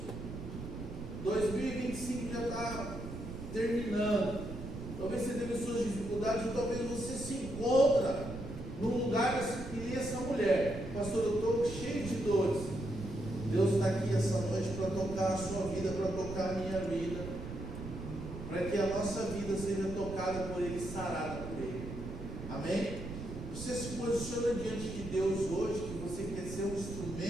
2025 já está terminando. Talvez você teve suas dificuldades, ou talvez você se encontra num lugar que nem essa mulher. Pastor, eu estou cheio de dores. Deus está aqui essa noite para tocar a sua vida, para tocar a minha vida, para que a nossa vida seja tocada por Ele, sarada por Ele. Amém? Você se posiciona diante de Deus hoje, que você quer ser um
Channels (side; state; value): right; noise; rumble, 9 dB below the sound